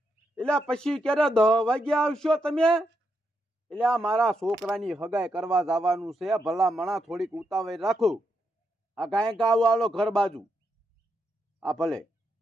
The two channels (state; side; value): normal; both; correlation 0.82